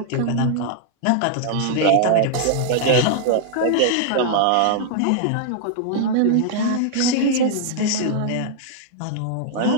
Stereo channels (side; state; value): both; different; correlation -0.01